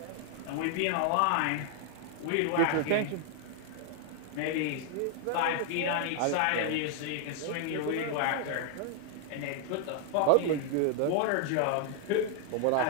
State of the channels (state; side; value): different; both; correlation 0.00